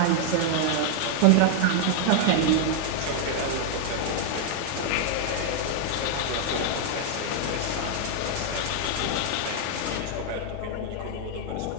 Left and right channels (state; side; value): different; both; correlation -0.01